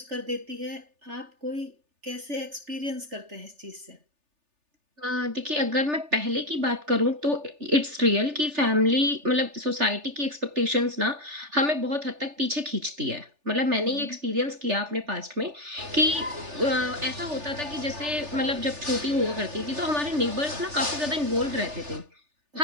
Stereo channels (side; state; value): left; late; 3.4 ms